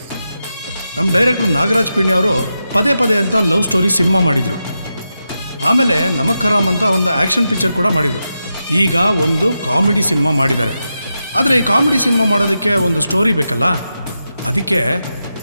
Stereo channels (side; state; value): both; inverted; correlation -0.89